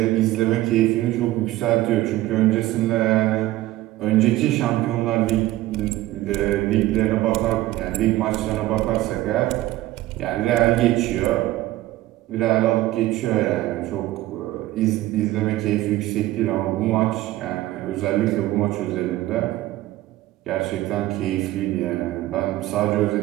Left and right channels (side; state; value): left; quieter; 16.3 dB